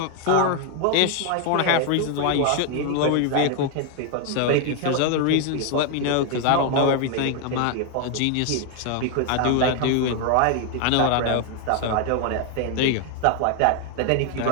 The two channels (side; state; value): both; different; correlation 0.00